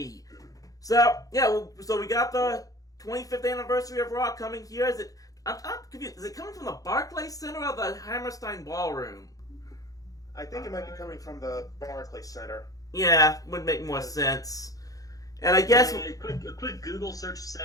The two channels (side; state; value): right; late; 0.17 ms